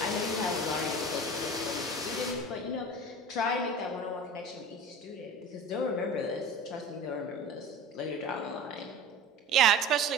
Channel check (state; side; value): normal; both; correlation 0.36